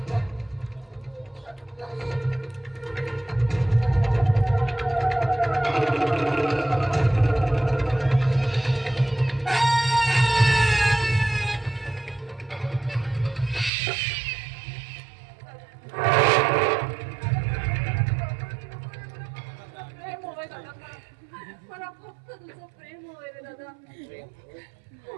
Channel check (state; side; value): drops out; left; at 13.7 s